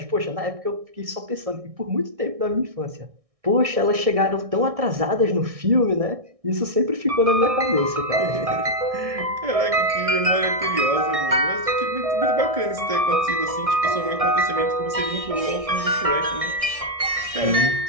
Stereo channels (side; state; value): left; late; 1.6 ms